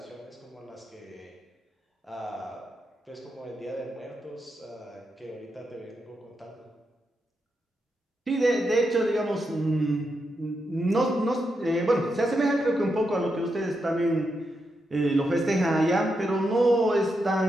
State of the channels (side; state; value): both; normal; correlation 0.84